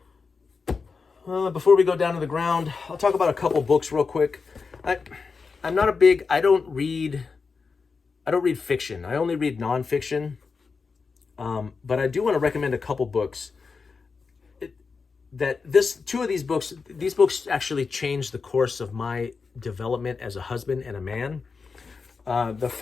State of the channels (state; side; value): quieter; right; 4.9 dB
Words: Before we go down to the ground, I'll talk about a couple books real quick. I'm not a big, I don't read fiction. I only read nonfiction. But I do want to recommend a couple books. Two of these books actually changed the course of my development as a husband and a man. The